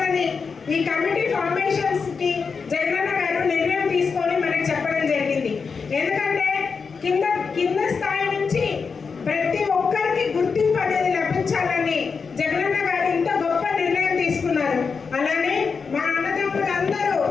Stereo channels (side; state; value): right; quieter; 5.3 dB